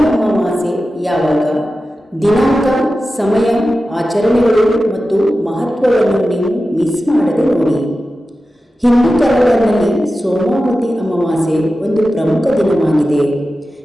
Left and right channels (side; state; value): both; normal; correlation 0.93